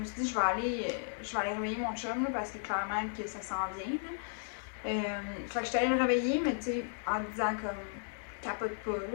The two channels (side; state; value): right; silent; 55 dB below the other